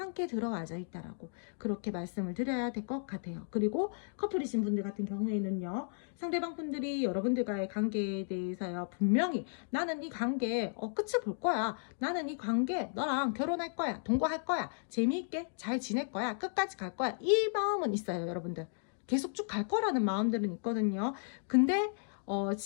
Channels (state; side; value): silent; right; digital silence